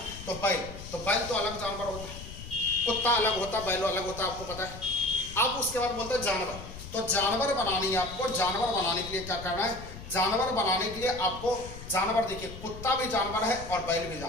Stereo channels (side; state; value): left; noise; rumble, 13 dB below the sound